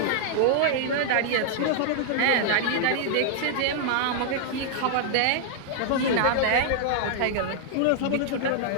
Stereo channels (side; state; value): both; different; correlation -0.01